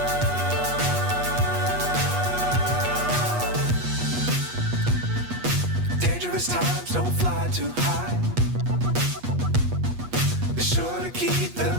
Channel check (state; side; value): late; left; 8.3 ms